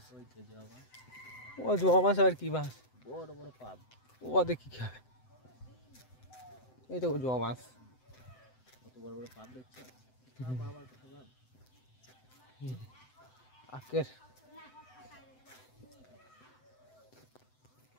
ওই তো জবা বাঁশ। ও জবা বাঁশ আবার কি বাঁশ? বড় বড় পাব। ও দেখি কি হবে। এই তো জবা বাঁশ, কত বড় বড় পাব দেখছো? আবার কথা ভাব। আকের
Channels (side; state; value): right; late; 7.9 ms